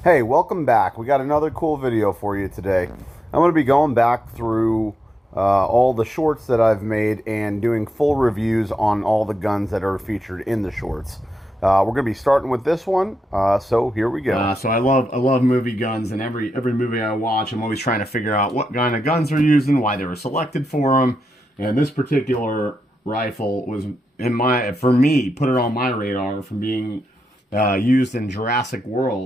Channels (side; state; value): both; normal; correlation 0.86